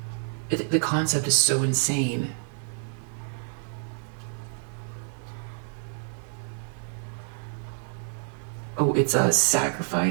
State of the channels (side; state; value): left; silent; digital silence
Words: The concept is so insane. Oh, it's a